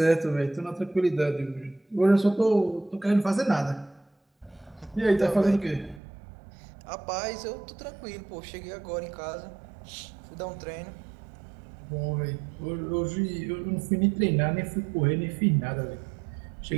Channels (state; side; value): drops out; left; at 6.0 s